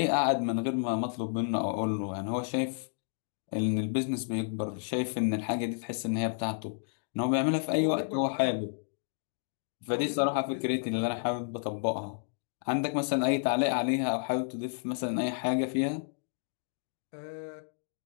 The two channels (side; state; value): right; silent; digital silence